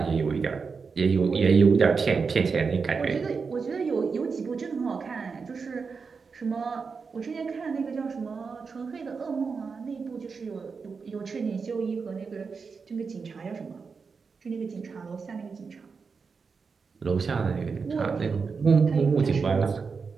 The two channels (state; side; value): quieter; left; 5.1 dB